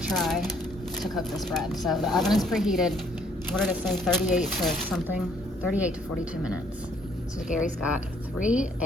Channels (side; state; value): both; normal; correlation 0.65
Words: try to cook this bread. So the oven is preheated. What did it say? 38 to something? 38 to 42 minutes. So Gary's got 3